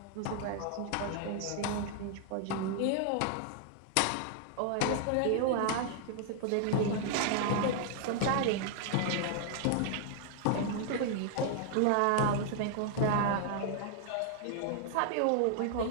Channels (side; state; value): both; different; correlation 0.00